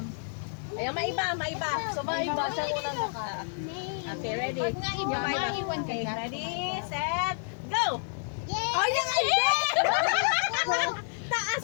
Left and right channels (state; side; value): silent; right; 58 dB below the other